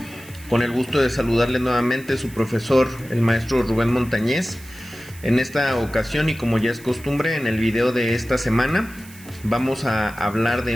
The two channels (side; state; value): right; noise; hiss, 20 dB below the sound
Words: con el gusto de saludarles nuevamente su profesor, el maestro Rubén Montañez. En esta ocasión, y como ya es costumbre, en el video de esta semana vamos a hablar